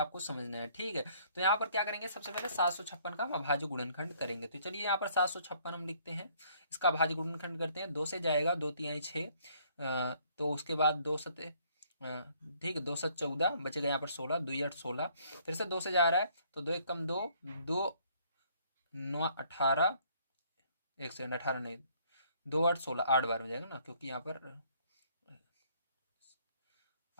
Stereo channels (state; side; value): inverted; both; correlation -0.63